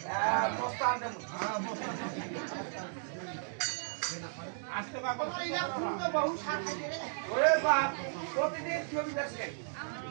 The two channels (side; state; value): left; silent; digital silence